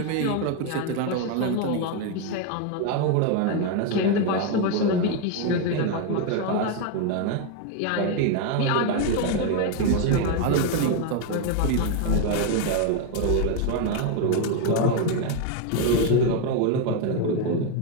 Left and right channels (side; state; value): both; different; correlation 0.01